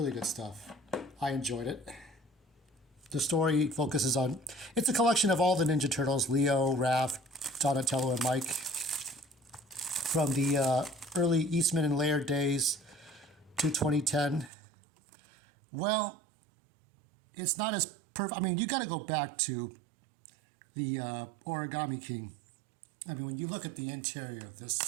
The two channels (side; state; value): left; drops out; at 14.5 s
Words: good stuff. I enjoyed it. The story focuses on, it's a collection of all the Ninja Turtles, Leo, Raph, Donatello, and Mike, from the early Eastman and Laird days to 2010. Well, it's not as perfect. I mean, you got to go back to the Origami King. I mean, when you look at the interior of